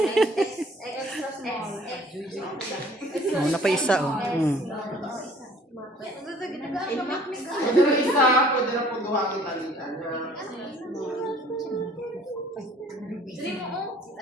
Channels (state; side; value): normal; both; correlation 0.55